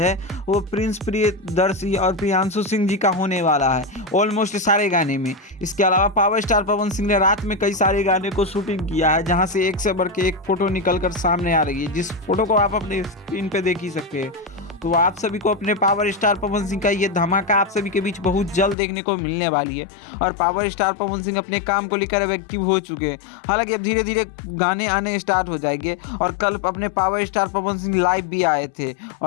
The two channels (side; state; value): right; drops out; at 18.8 s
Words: वो प्रिंस प्रियदर्शी और प्रियांशु सिंह जी का होने वाला है ऑलमोस्ट सारे गाने में। इसके अलावा पावर स्टार पवन सिंह ने रात में कई सारे गाने को शूटिंग किया है, जहां से एक से बढ़ के एक फोटो निकलकर सामने आ रही है, जिस फोटो को आप अपने स्क्रीन पे देख ही सकते हैं। तो आप सभी को अपने पावर स्टार पवन सिंह का ये धमाका आप सभी के बीच बहुत जल्द देखने को मिलने वाली है। और पावर स्टार पवन सिंह अपने काम को लेकर अब एक्टिव हो चुके हैं। हालांकि अब धीरे धीरे गाने आने स्टार्ट हो जाएंगे। और कल अपने power star Pawan Singh live भी आए थे